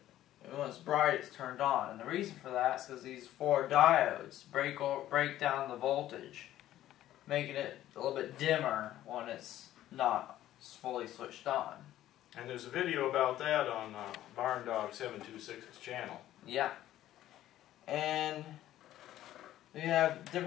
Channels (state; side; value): quieter; right; 13.4 dB